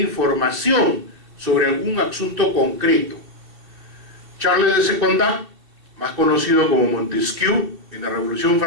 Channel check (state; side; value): late; left; 2.6 ms